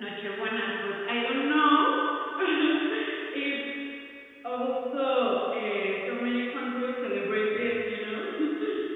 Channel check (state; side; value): identical; both; correlation 1.00